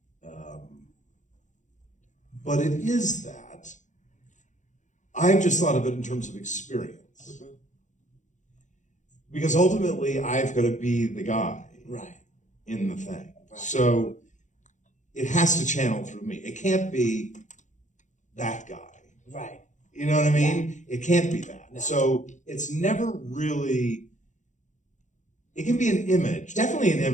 But it is that. I've just thought of it in terms of experience. Mm-hmm. Because ultimately, I've got to be the guy Right. in the thing. Right. So it has to channel through me. It can't be that guy. Right. You know what I mean? It can't be that. No. So it's never really, it can be an image, definitely an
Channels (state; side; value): late; right; 0.36 ms